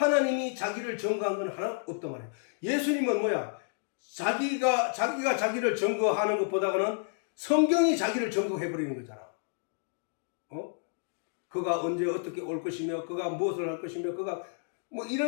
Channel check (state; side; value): silent; right; digital silence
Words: 자기를 증거한 건 하나 없단 말이야. 예수님은 뭐야? 자기가 자기를 증거하는 것보다는 성경이 자기를 증거해버리는 거잖아. 그가 언제 어떻게 올 것이며, 그가 무엇을 할 것이며, 그가